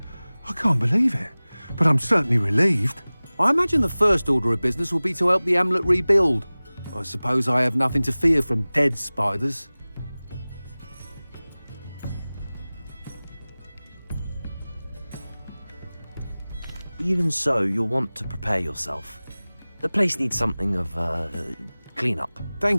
I can't believe it, but I'm certainly relieved. I imagine the first order of business will be to help the amulet rebuild. I suppose I have nothing to fear from dead spiders. Even so, you'll want to prepare yourself. The place needs something of clean-up.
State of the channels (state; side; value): inverted; both; correlation -0.99